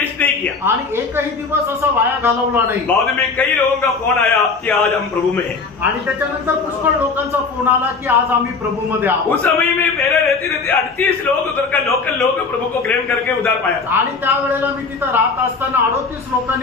नहीं किया, आणि एकही दिवस असा वाया घालवला नाही। बाद में कई लोगों का फोन आया कि आज हम प्रभु में हैं, आणि त्याच्यानंतर पुष्कळ लोकांचा फोन आला की आज आम्ही प्रभू मध्ये आहोत। उस समय में मेरे रहते रहते 38 लोग उधर का लोकल लोग प्रभु को ग्रहण करके उधार पाया था। आणि त्यावेळेला मी तिथं राहत असताना 38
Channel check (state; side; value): quieter; right; 4.5 dB